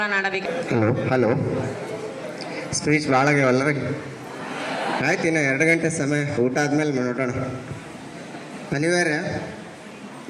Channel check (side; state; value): both; identical; correlation 1.00